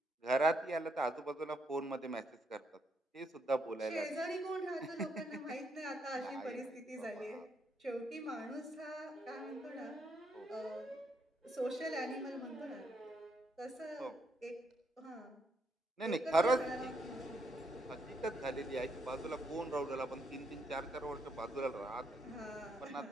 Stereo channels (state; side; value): normal; both; correlation 0.75